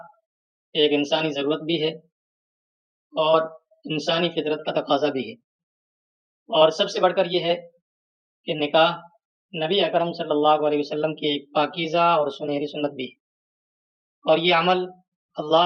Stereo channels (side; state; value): both; identical; correlation 1.00